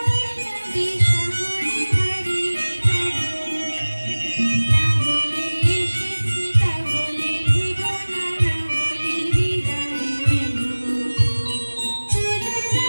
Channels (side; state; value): both; inverted; correlation -1.00